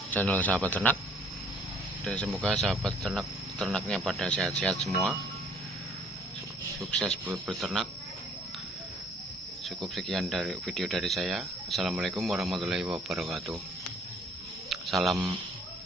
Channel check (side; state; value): both; normal; correlation 0.59